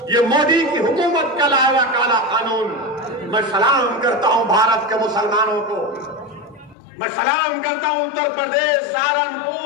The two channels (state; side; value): drops out; right; at 6.8 s